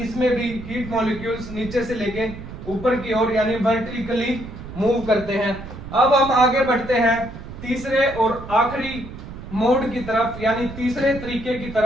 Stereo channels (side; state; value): right; noise; rumble, 12 dB below the sound